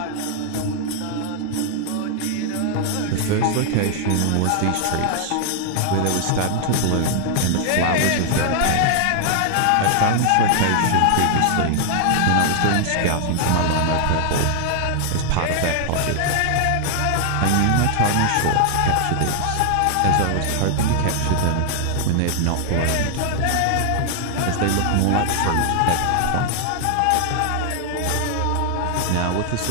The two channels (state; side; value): different; both; correlation 0.00